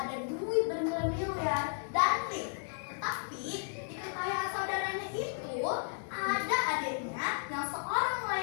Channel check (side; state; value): right; silent; digital silence